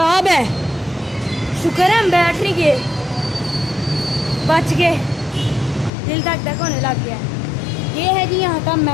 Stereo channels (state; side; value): drops out; right; at 5.9 s